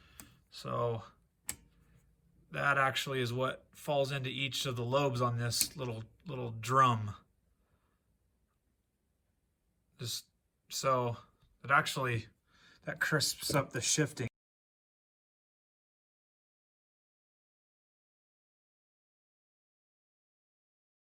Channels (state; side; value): identical; both; correlation 1.00